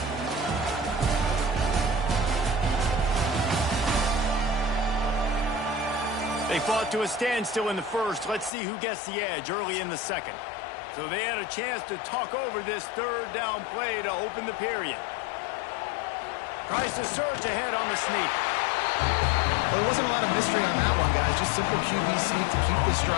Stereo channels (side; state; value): right; drops out; at 8.5 s